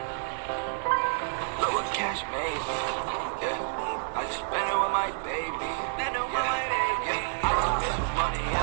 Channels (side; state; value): left; silent; digital silence